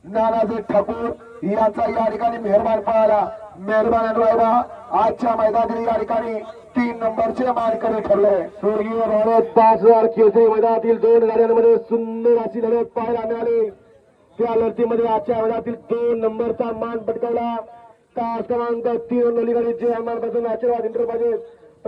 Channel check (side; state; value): both; identical; correlation 1.00